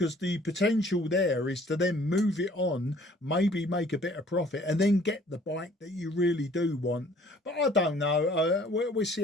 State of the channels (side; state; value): both; normal; correlation 0.56